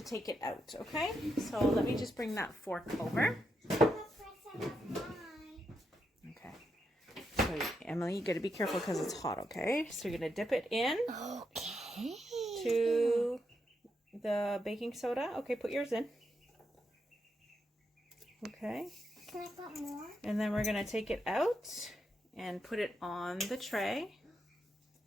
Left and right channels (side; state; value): both; normal; correlation 0.82